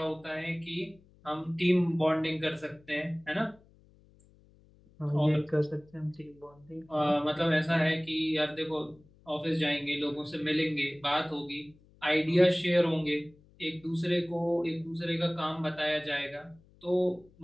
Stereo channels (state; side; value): noise; left; hum, 28 dB below the sound